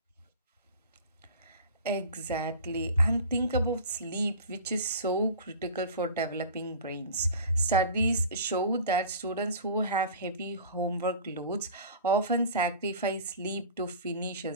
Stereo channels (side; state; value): both; inverted; correlation -0.38